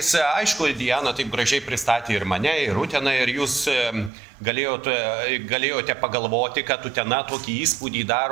Aišku, Diana taip gražiai pristatė ir mane, ir Uteną, ir jūs galėjote pagalvoti, kad Utena tokį įspūdį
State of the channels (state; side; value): drops out; left; at 4.1 s